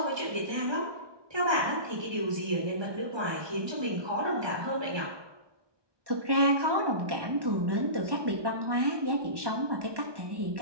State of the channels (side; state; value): left; late; 1.2 ms